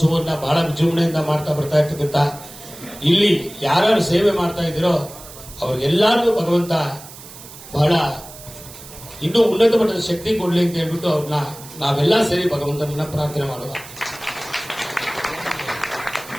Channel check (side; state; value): right; noise; hiss, 17 dB below the sound